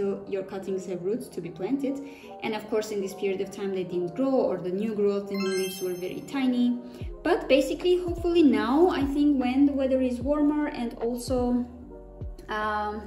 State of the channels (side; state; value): both; identical; correlation 1.00